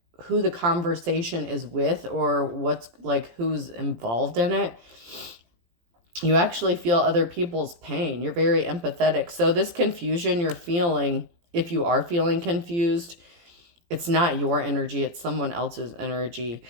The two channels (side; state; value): left; late; 17 ms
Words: who the conversation is with or what's like who's involved in it. You actually feel other people's pain. You're very empathetic. So this confusion you're feeling, if you are feeling confused, it's not your energy, it's someone else's energy.